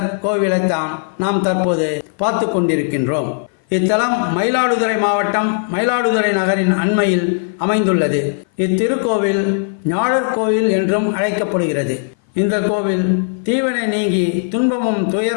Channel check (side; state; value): right; silent; 58 dB below the other